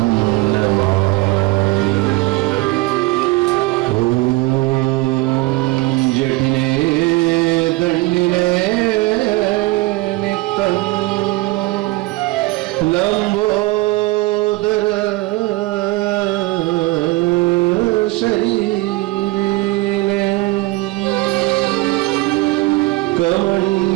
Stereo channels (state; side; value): quieter; left; 20.6 dB